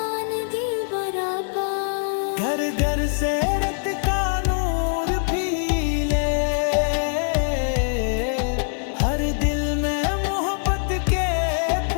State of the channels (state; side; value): silent; right; digital silence